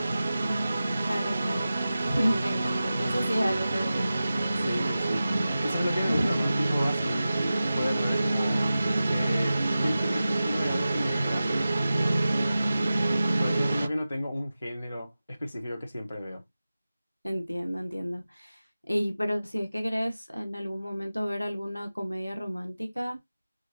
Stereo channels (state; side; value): inverted; both; correlation -0.95